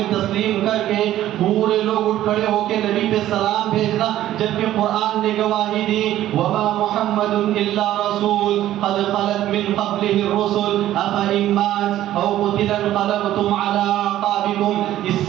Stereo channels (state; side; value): quieter; left; 13.3 dB